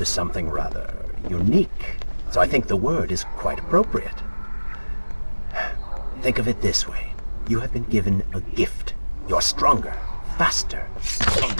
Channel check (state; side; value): inverted; both; correlation -1.00